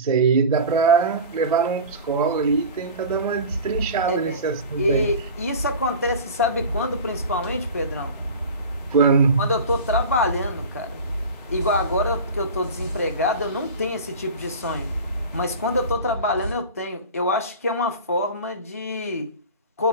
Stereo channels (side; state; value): both; inverted; correlation -0.33